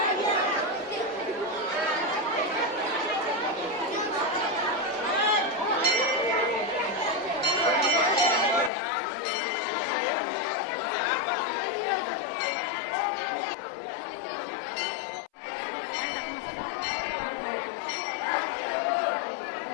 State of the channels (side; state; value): right; drops out; at 8.7 s